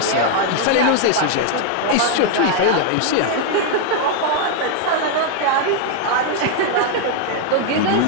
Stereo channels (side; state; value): both; different; correlation 0.00